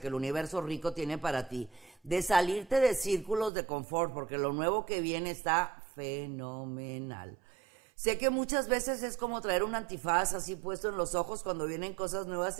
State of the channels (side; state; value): left; drops out; at 3.5 s